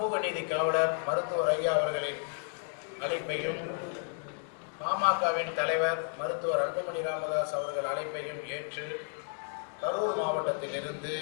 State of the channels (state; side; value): silent; right; 56 dB below the other